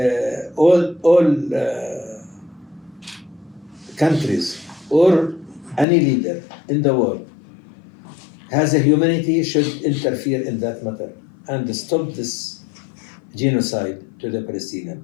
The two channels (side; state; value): right; drops out; at 5.9 s